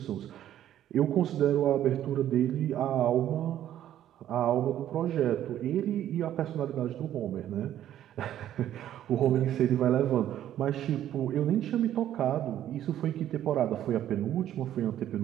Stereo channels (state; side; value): quieter; left; 11.7 dB